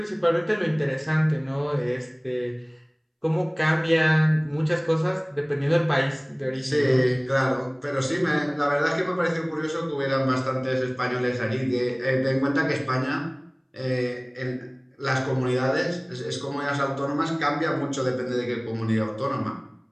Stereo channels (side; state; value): both; identical; correlation 1.00